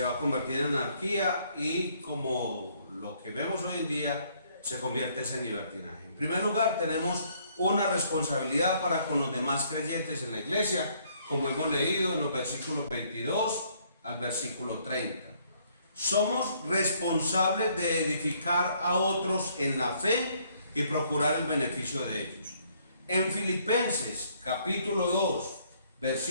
va a convertir en anarquía y, como lo que vemos hoy en día, se convierte en libertinaje. En primer lugar, tenemos una responsabilidad para con los demás creyentes en la iglesia, como hemos leído en los versículos 22 al versículo 30. Somos responsables de edificar a otros en la fe y procurar el beneficio de ellos. En Filipenses capítulo 2,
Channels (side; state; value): both; inverted; correlation -0.66